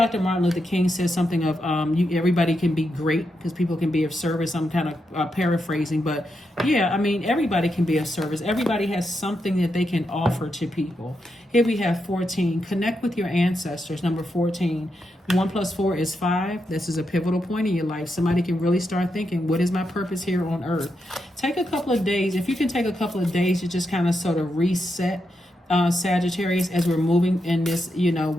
Martin Luther King says something of everybody can be great because people can be of service. I'm kind of paraphrasing, but yeah, I mean, everybody can be of service. Everybody has something that they can offer to people. Here we have 14. Connect with your ancestors. Number 14. 1 + 4 is 5. This is a pivotal point in your life. Somebody can really start thinking, what is my purpose here on earth? Take a couple of days. If you can take a couple of days to just kind of sort of reset, Sagittarius, as we're moving in this,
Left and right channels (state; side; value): normal; both; correlation 0.84